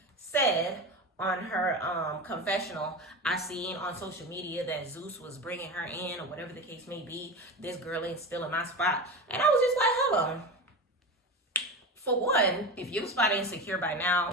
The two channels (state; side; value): normal; both; correlation 0.25